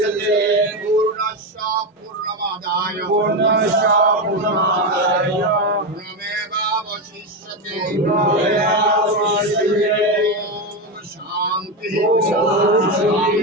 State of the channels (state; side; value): normal; both; correlation 0.12